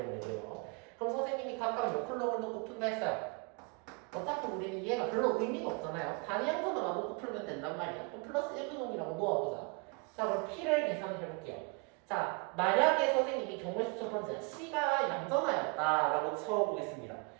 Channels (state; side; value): quieter; left; 32.6 dB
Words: 그럼 선생님이 각각 몇 콜럼을 놓고 푼다 했어요. 어차피 우리는 얘가 별로 의미가 없잖아요. 단위 양전화만 놓고 풀면 된단 말이야. 그럼 플러스 1분홍이라고 놓아보자. 자, 그럼 P를 계산을 해볼게요. 자, 만약에 선생님이 경우의 수 첫 번째 C가 양전화였다라고 쳐보겠습니다.